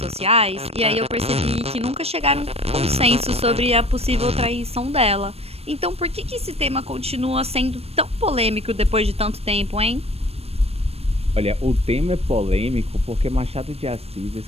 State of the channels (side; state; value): left; late; 0.29 ms